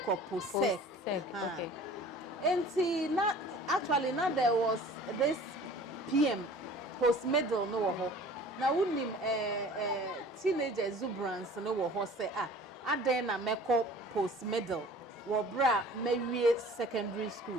post sec. Okay. Enti na actually na there was this PM post middle no wo ho. Na unim teenage exuberance no wo ho say aden na meko post middle wo bra mewie secondary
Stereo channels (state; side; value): normal; both; correlation 0.46